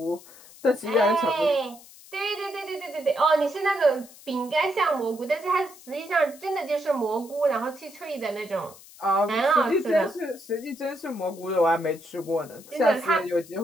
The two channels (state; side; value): noise; left; hiss, 21 dB below the sound